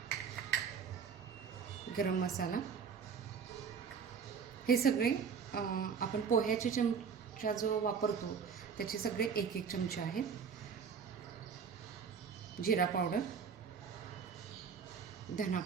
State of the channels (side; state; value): left; quieter; 6.4 dB